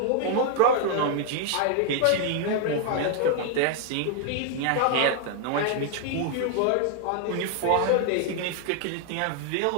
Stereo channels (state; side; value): different; both; correlation 0.00